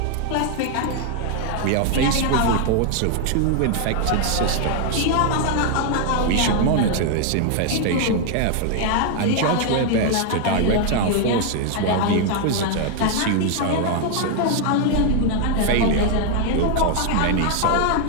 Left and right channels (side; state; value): both; different; correlation 0.00